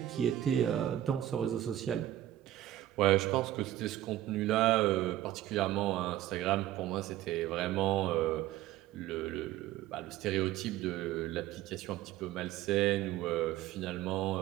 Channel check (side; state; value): left; quieter; 13.5 dB